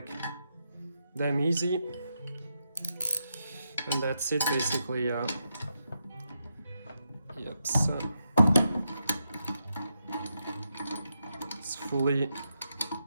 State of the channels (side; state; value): both; inverted; correlation -0.84